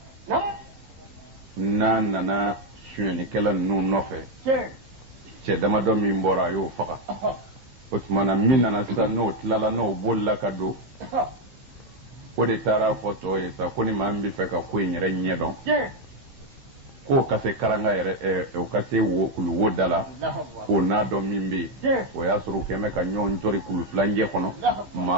na nana suɲɛnikɛla ninnu nɔfɛ cɛ damadɔ min bɔra a y'o faga o tumana min nana sisan n'o tilala n'o bolila ka don o de taara fɔ tɔw ye sa ko ni maa min bɛ fɛ ka ko in yɛrɛ ɲɛdɔn k'o ka se karanga yɛrɛ o ka se kuluwo da la k'o n'a dɔn min bɛ yen o y'a sɔrɔ u kɛn bɛ ka ɲɔgɔn jɔri kulu filancɛ kɔnɔ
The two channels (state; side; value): late; left; 15 ms